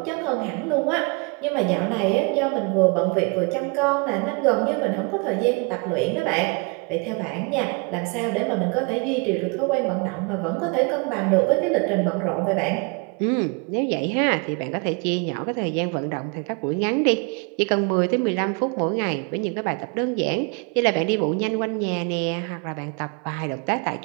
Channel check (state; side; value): quieter; left; 32.4 dB